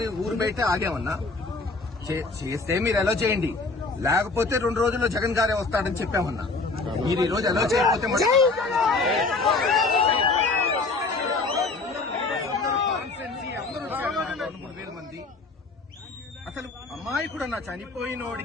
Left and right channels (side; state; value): right; quieter; 3.7 dB